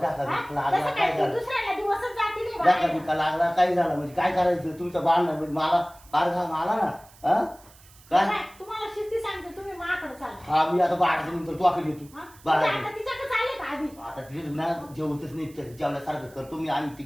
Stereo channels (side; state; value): right; noise; hiss, 25 dB below the sound